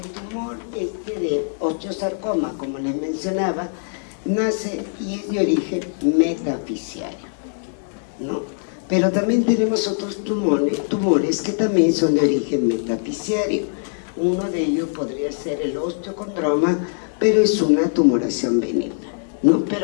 tumor de osteosarcoma, como les mencionaba, nace y es de origen metafisiario, ¿no? Pero también tenemos otros tumores que también son de origen metafisiario. Uno de ellos podría ser el osteocondroma, pero es una tumoración benigna, ¿no?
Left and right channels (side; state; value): right; silent; digital silence